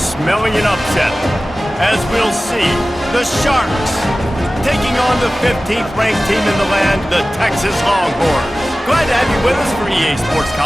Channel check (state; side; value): normal; both; correlation 0.96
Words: an upset. As we'll see, the Sharks taking on the 15th ranked team in the land, the Texas Longhorns. Glad to have you with us for EA Sports